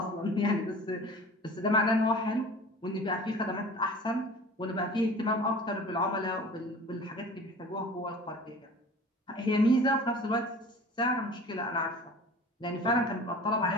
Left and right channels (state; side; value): normal; both; correlation 0.42